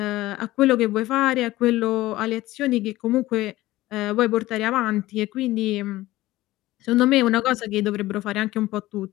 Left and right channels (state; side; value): quieter; right; 17.1 dB